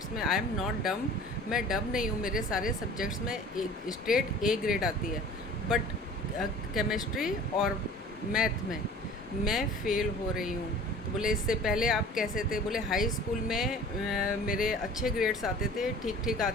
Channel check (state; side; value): normal; both; correlation 0.44